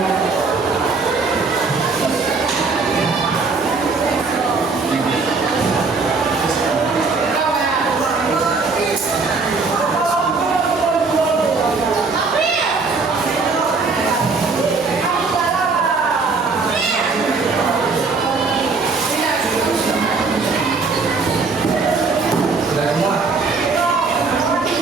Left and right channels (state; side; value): quieter; left; 4.2 dB